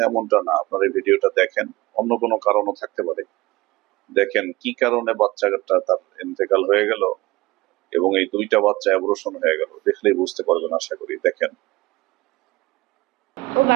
এমনটা না। আপনারা এই ভিডিওটা দেখেন, অন্য কোনো কারণও থাকতে পারে। দেখেন কি কারণে বাচ্চাটা তার ইন্তেকাল হয়ে গেল এবং এই 2টা বাচ্চা অ্যাবর্শন হয়ে গেল, দেখলেই বুঝতে পারবেন আশা করি। দেখেন। ও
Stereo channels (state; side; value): quieter; left; 20.1 dB